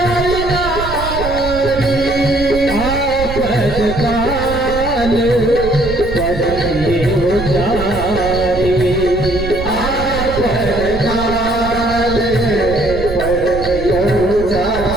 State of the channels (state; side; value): noise; right; rumble, 8 dB below the sound